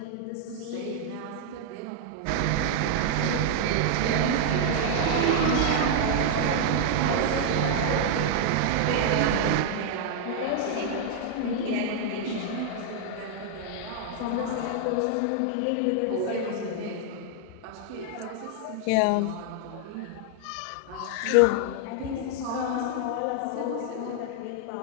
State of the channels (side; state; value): both; different; correlation 0.00